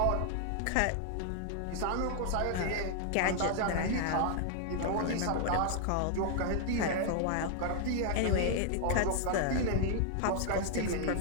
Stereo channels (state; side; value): different; both; correlation 0.00